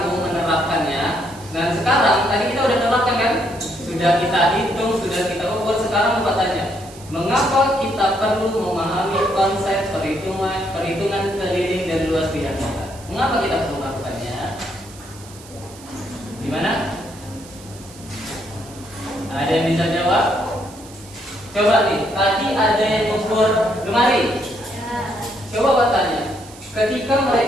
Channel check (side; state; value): right; noise; hiss, 20 dB below the sound